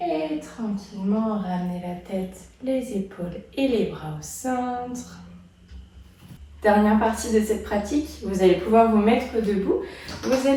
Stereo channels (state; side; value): identical; both; correlation 1.00